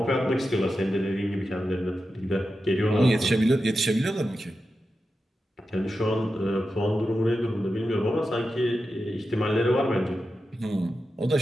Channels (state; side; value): normal; both; correlation 0.90